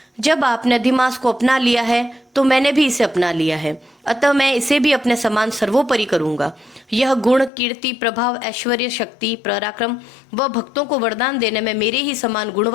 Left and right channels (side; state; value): right; drops out; at 7.5 s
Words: जब आपने अधिमास को अपना लिया है तो मैंने भी इसे अपना लिया है, अतः मैं इसे भी अपने समान सर्वोपरि करूंगा। यह गुण, कीर्ति, प्रभाव, ऐश्वर्य, शक्ति, पराक्रम व भक्तों को वरदान देने में मेरे ही समान गुण